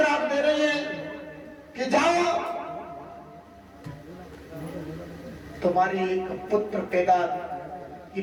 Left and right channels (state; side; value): identical; both; correlation 1.00